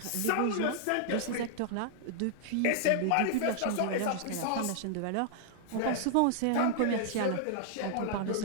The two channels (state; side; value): different; both; correlation -0.01